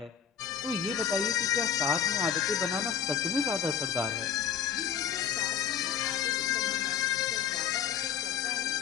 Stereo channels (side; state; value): right; quieter; 8.1 dB